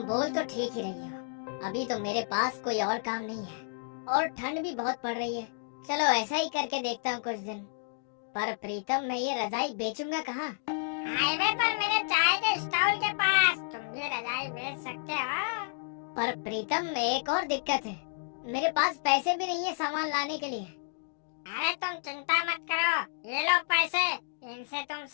बोल तो ठीक ही रही हो, अभी तो मेरे पास कोई और काम नहीं है और ठंड भी बहुत पड़ रही है। चलो ऐसा ही करके देखता हूँ कुछ दिन। पर प्रीतम, मैं ये रजाई बेचूंगा कहाँ? हाईवे पर मेरे चाय के स्टॉल के पास तुम ये रजाई बेच सकते हो। पर प्रीतम, एक और दिक्कत है, मेरे पास पैसे भी नहीं है सामान लाने के लिए। अरे तुम चिंता मत करो, ये लो पैसे, इनसे तुम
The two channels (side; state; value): right; silent; digital silence